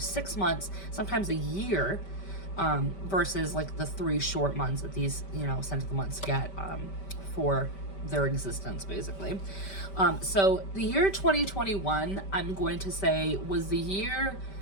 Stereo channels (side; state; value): right; late; 5.1 ms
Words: months, sometimes a year, versus like the 3 short months that these, scent of the months get for their existence, basically. So the year 2021, I'm going to say, was the year